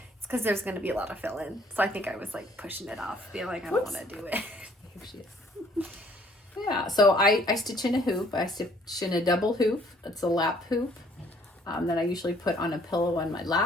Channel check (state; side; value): normal; both; correlation 0.61